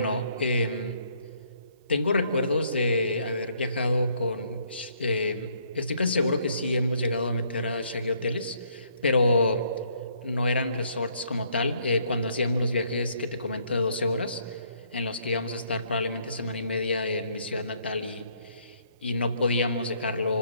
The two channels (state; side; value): inverted; both; correlation -0.68